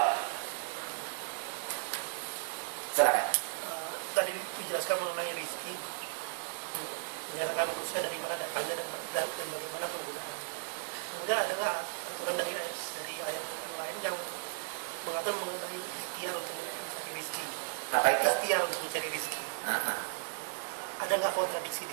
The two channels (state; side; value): silent; left; digital silence